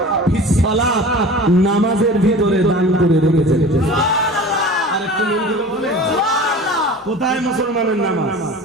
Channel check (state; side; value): normal; both; correlation 0.38